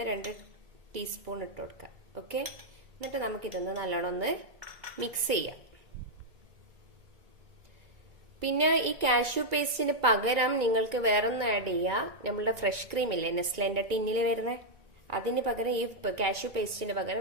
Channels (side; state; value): left; late; 2.2 ms